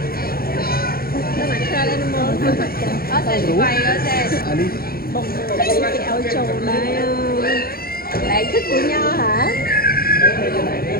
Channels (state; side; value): late; right; 0.44 ms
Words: តែមក trail animal អត់តែវាយអត់ទេ à đi បងគេឲ្យចូលដែរឡែកទឹកញ៉ាហ៎